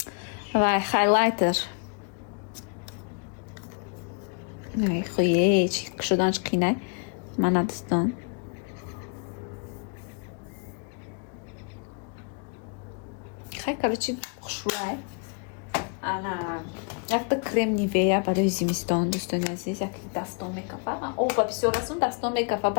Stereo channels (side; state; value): right; quieter; 37.0 dB